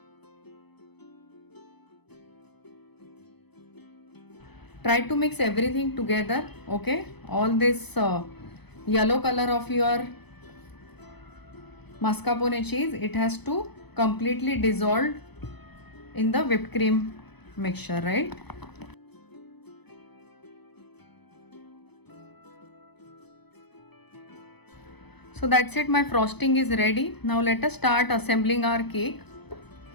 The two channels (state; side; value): late; right; 0.99 ms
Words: Try to mix everything together, okay. All this yellow color of your mascarpone cheese, it has to completely dissolve in the whipped cream mixture, right? So that's it, my frosting is ready. Now let us start assembling our cake.